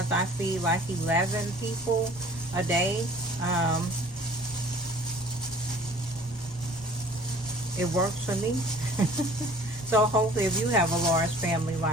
I feed like 11 people a day, it works for me. So hopefully if you have a large family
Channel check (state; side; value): normal; both; correlation 0.50